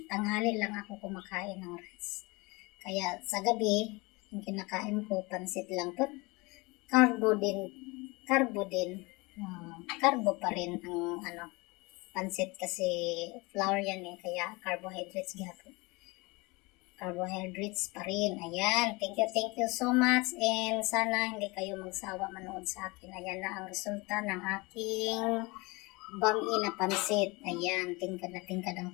Tanghali lang ako kumakain ng rice. Kaya sa gabi, yung kinakain ko, pansit lang to. Carbo din. Carbo pa rin ang pansit kasi flour yan kaya carbohydrates gyapon. Carbohydrates pa rin. Ayan. Thank you so much. And sana hindi kayo magsawa manood sa akin. Ayan na ang resulta ng aking bami na pansit. Ayan. Tingkad na tingkad ang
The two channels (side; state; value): right; quieter; 25.2 dB